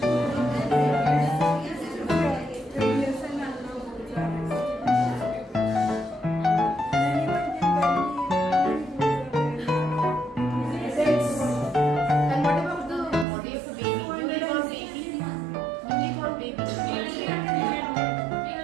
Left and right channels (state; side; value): drops out; left; at 13.2 s